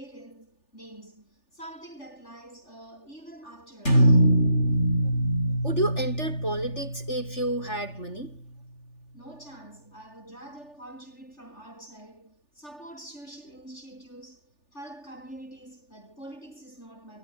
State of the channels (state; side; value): late; right; 3.4 ms